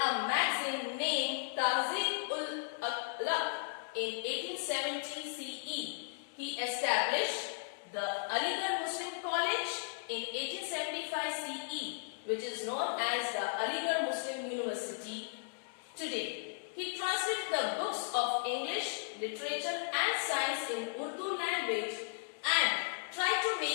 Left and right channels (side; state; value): right; silent; digital silence